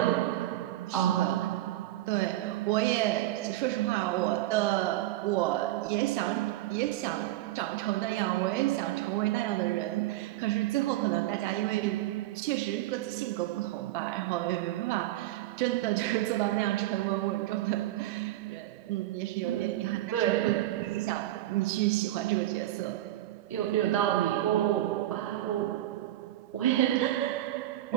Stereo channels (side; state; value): left; quieter; 15.1 dB